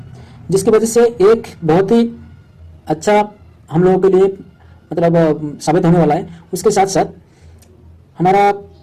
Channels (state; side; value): identical; both; correlation 1.00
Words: जिसकी वजह से एक बहुत ही अच्छा हम लोगों के लिए मतलब साबित होने वाला है। उसके साथ साथ हमारा